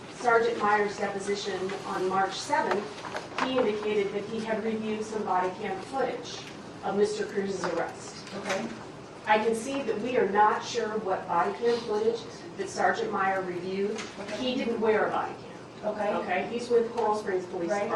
Sergeant Meyer's deposition on March 7th, he indicated that he had reviewed some body cam footage of Mr. Cruz's arrest. Okay. I can see that we are not sure what body cam footage that Sergeant Meyer reviewed. Okay. He didn't wear a body cam. Okay. Okay, he's with Coral Springs Police Right.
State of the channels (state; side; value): identical; both; correlation 1.00